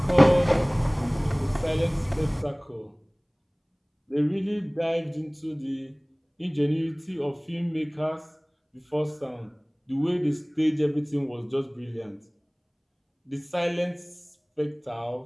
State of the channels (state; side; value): identical; both; correlation 1.00